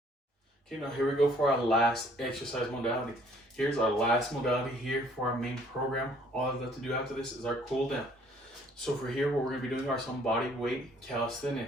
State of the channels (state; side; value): normal; both; correlation 0.60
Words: Okay, now here we go for our last exercise modality. Here's our last modality here for our main program. All I've got to do after this is our cool down. So for here, what we're gonna be doing are some body weight